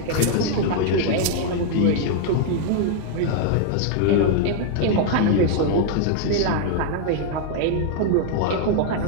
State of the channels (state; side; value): different; both; correlation 0.00